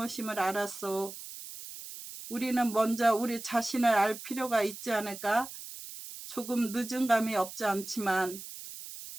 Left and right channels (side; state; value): right; noise; hiss, 12 dB below the sound